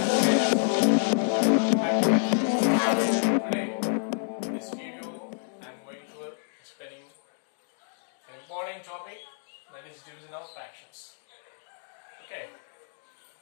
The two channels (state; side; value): silent; right; digital silence